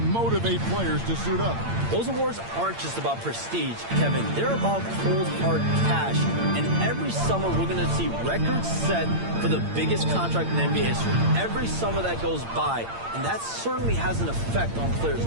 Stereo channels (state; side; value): late; left; 8.8 ms